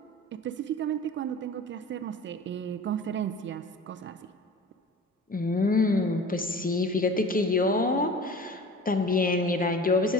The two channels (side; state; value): both; normal; correlation 0.40